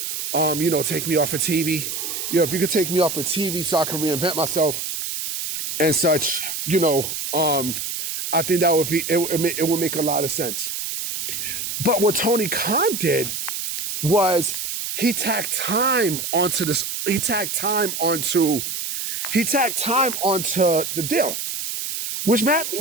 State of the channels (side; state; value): right; noise; hiss, 4 dB below the sound